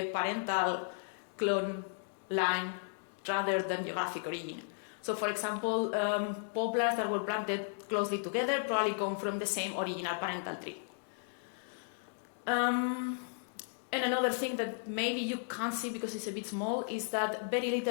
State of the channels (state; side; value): silent; right; digital silence